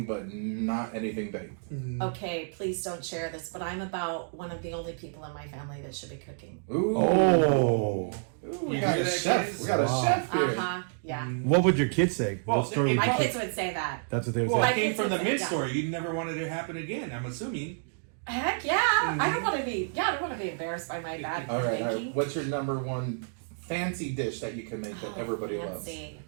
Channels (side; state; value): left; silent; digital silence